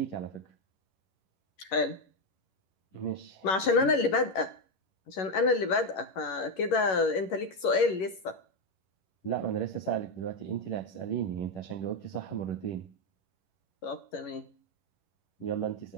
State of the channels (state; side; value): late; right; 11 ms